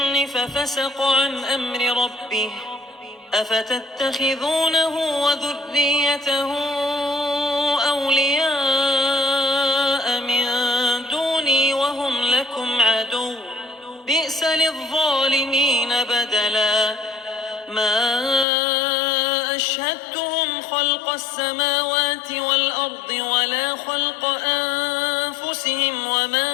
ففسق عن أمر ربه أفتتخذونه وذريته أولياء من دوني وهم لكم عدو بئس للظالمين بدلا ما أشهدتهم خلق السماوات والأرض ولا خلق أنفسهم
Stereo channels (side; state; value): right; drops out; at 18.4 s